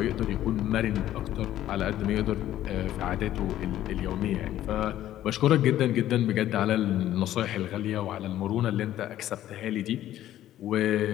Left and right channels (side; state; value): right; quieter; 12.9 dB